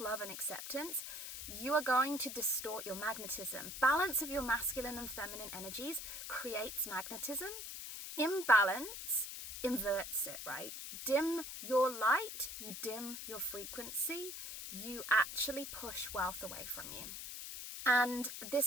and acceptance, you are going to distort your magnetism. Balance of your masculine and feminine energies creates magnetism. Imbalance inverts it, right? Dim your light, you dim your frequency, you actually push wealth away from you. And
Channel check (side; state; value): left; noise; hiss, 8 dB below the sound